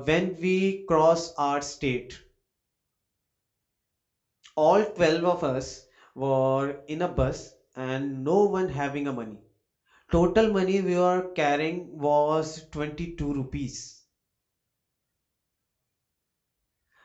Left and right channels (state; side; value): identical; both; correlation 1.00